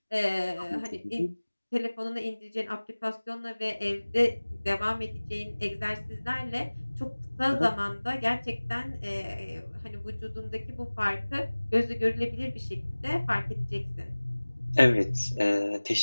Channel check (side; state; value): both; inverted; correlation -1.00